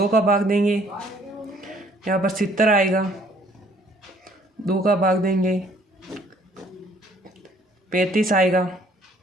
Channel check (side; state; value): both; normal; correlation 0.61